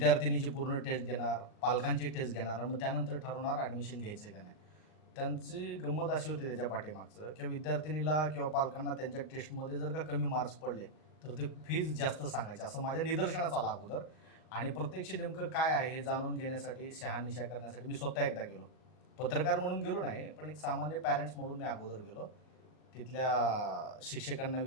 पूर्ण टेस्ट घेणार, पालकांची टेस्ट घेणार आणि मग त्यानंतर ठरवणार ॲडमिशन घ्यायचं का नाही. त्यांची गंमत अशी होती त्याच्या पाठीमागचं की विद्यार्थिनीला किंवा पालकांना त्यांच्या टेस्टमध्ये जर का कमी मार्क्स पडले, तर ते फीज जास्त सांगायचे असं माझ्या निदर्शनास आलं अगोदर. आणि प्रत्यक्ष नेमकं काय आहे हे जाणून घेण्यासाठी, शहानिशा करण्यासाठी मी स्वतः एकदा गेलो. पत्रकार म्हणून गेलो नाही, पण एक सामान्य पॅरेंट्स म्हणून मी अगोदर गेलो. तिथल्या शिक्षकांना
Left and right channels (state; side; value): late; right; 39 ms